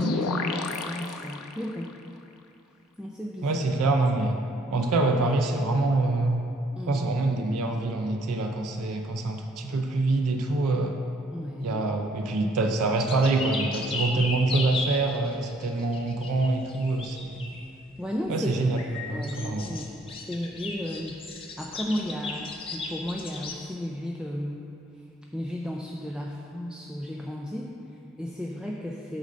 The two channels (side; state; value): both; normal; correlation 0.65